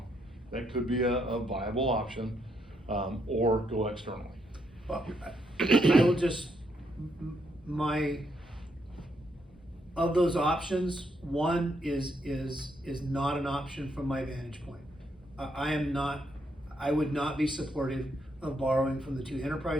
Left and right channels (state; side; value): normal; both; correlation 0.76